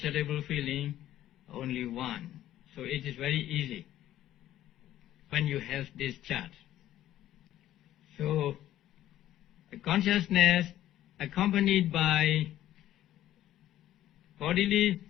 feeling? Only 1. So it is very easy when you have this chart. So the consciousness accompanied by bodily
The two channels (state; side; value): quieter; right; 13.1 dB